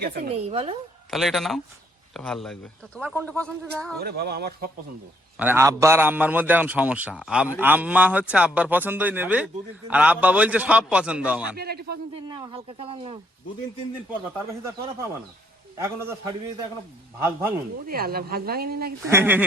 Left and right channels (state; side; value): normal; both; correlation 0.70